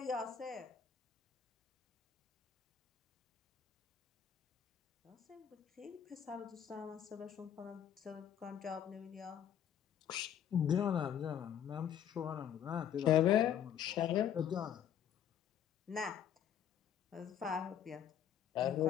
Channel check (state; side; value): quieter; right; 9.3 dB